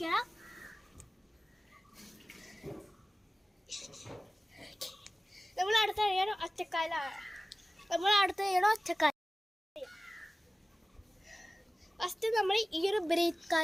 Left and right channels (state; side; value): normal; both; correlation 0.97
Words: നമ്മൾ അടുത്ത കഴിയണം ഒറ്റക്കാലാണ്. ഫസ്റ്റ് നമ്മൾ ഈ ഒരു ബ്രീത്ത്